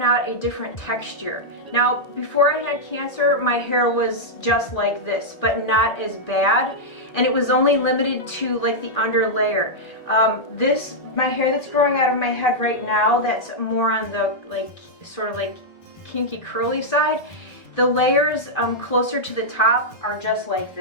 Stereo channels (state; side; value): late; right; 1.8 ms